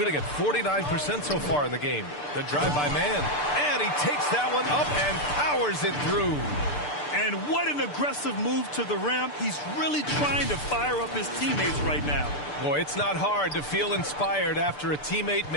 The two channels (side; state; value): right; late; 6.8 ms